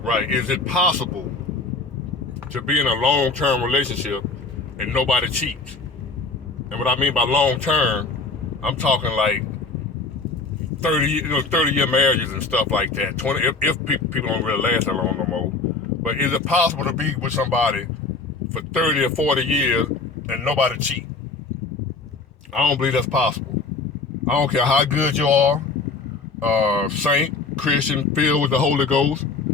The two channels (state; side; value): quieter; right; 4.0 dB